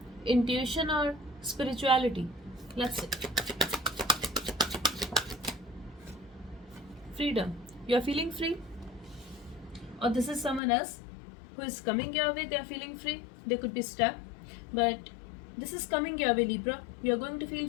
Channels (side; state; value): right; drops out; at 10.6 s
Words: intuition or spirituality. Let's see. Freedom. You are feeling free, or this is someone else who is coming your way. They are feeling free. They could be stuck, but this is coming your way, Libra. You are going to